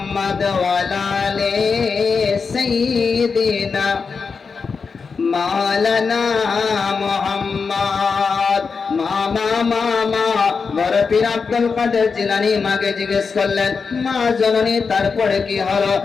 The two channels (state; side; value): quieter; right; 5.2 dB